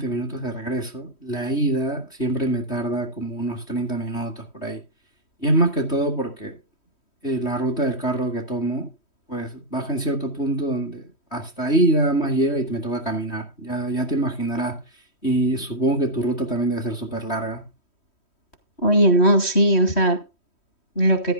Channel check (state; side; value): late; right; 3.1 ms